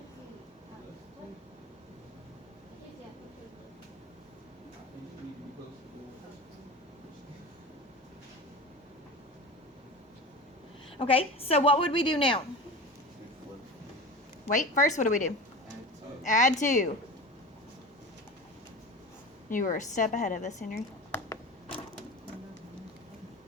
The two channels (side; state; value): both; normal; correlation 0.32